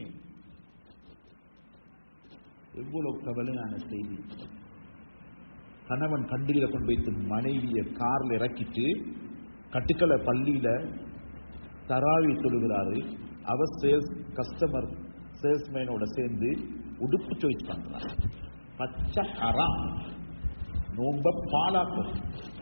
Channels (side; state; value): both; inverted; correlation -1.00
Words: எவ்வளவு கவலையான செய்தி. கணவன் கண்டில கொண்டு வைத்து மனைவியை கார்ல இறக்கிட்டு கட்டுக்கலை பள்ளியில தராவி தொழுகிறாரு. அவர் கஸ்டமர் சேல்ஸ்மேனோட சேர்ந்து உடுப்பு சாய்ஸ் பண்றார். பச்சை ஹராம். நோம்ப பாலாக்கும்,